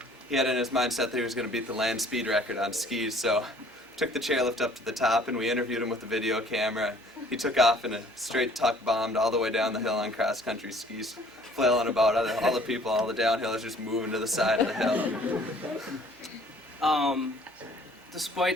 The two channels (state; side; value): normal; both; correlation 0.55